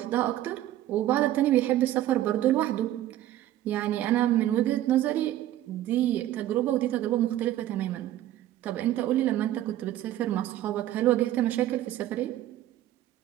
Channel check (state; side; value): quieter; left; 13.4 dB